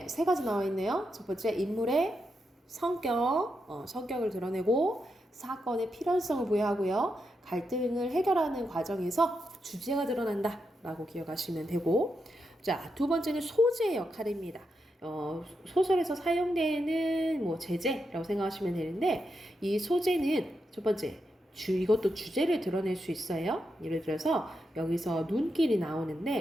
세 가지 나와 있네요. 첫 번째, 인물의 성격을 드러내고 사건의 필연성을 부여하고요. 갈등을 해결하는 과정에서 주제가 드러난다 라고 기억하시면 되고, 자, 두 번째는 소재의 역할입니다. 소설에서 사용되는 뭐 제재라고 생각하시면 되는데, 이 소재는 첫 번째, 이것도 주제를 드러낼 수 있어요. 예를 들어서 여기서 눈길이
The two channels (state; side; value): normal; both; correlation 0.85